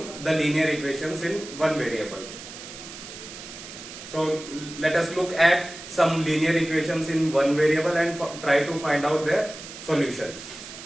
the linear equations in one variable. So let us look at some linear equations in one variable and try to find out their solution.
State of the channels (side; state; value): right; noise; hiss, 13 dB below the sound